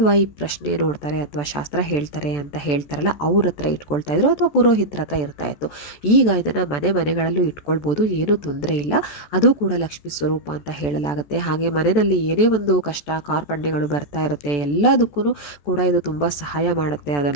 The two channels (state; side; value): late; right; 14 ms